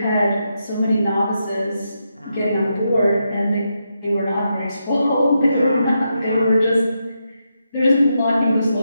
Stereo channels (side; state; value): both; inverted; correlation -0.84